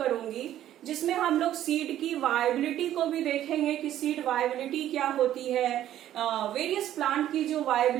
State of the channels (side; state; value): left; quieter; 12.2 dB